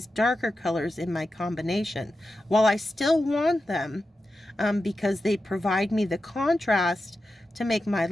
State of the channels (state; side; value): normal; both; correlation 0.91